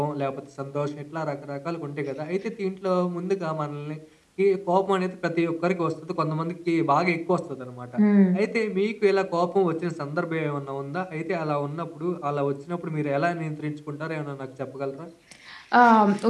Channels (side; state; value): both; identical; correlation 1.00